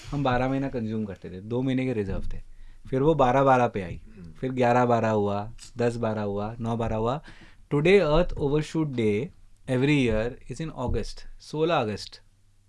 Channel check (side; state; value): both; identical; correlation 1.00